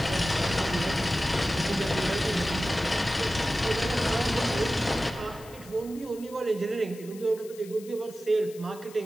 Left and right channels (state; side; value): noise; left; hiss, 20 dB below the sound